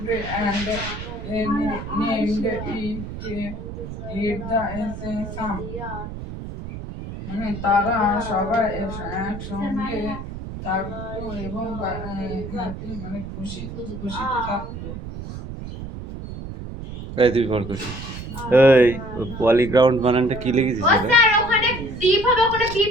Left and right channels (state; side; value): noise; right; rumble, 9 dB below the sound